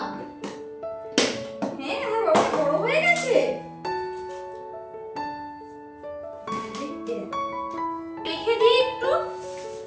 হ্যাঁ আমার বাবা বড় হয়ে গেছে। রেখে দিই একটু,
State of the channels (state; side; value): identical; both; correlation 1.00